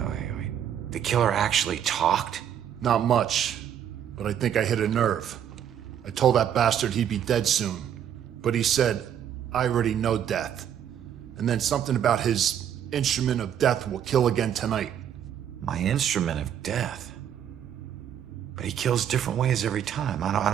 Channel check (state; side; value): quieter; left; 9.5 dB